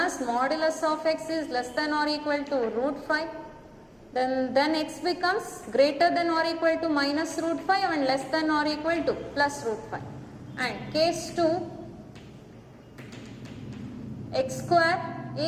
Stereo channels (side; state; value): both; identical; correlation 1.00